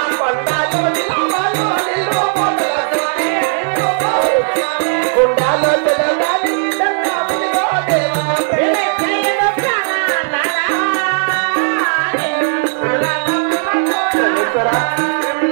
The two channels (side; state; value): left; silent; digital silence